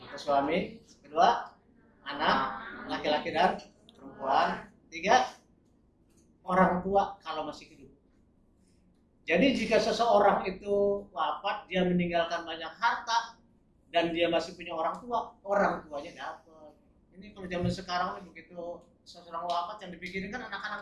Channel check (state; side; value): identical; both; correlation 1.00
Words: atau suami, kedua anak laki-laki dan perempuan, tiga orang tua kalau masih hidup. Jadi jika seseorang itu wafat, dia meninggalkan banyak harta dan dia masih punya orang tuanya dapat. Ini kalau zaman sekarang ini begitu seseorang wafat yang dipikirin kan